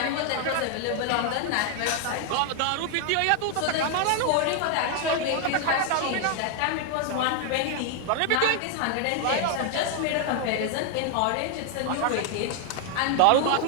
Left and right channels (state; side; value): different; both; correlation 0.00